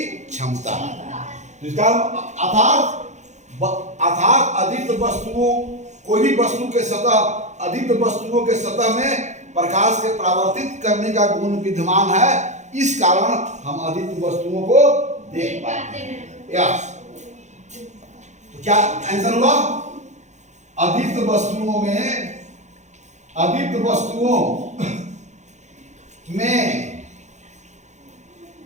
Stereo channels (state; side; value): late; left; 0.34 ms